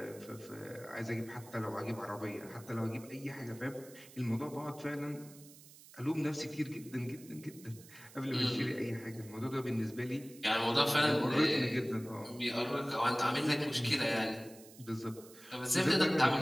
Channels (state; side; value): noise; right; hiss, 20 dB below the sound